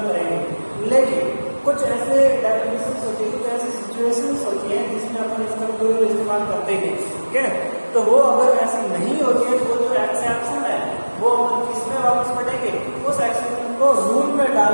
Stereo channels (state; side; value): inverted; both; correlation -1.00